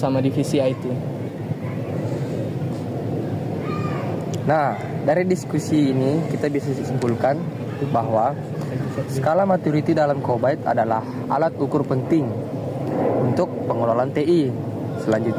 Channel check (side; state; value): both; identical; correlation 1.00